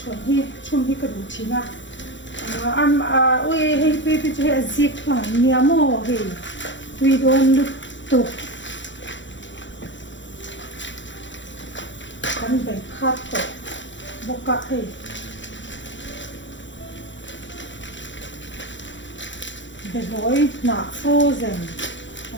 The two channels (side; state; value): right; late; 0.54 ms